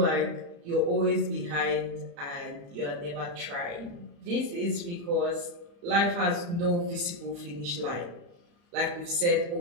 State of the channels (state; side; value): late; left; 35 ms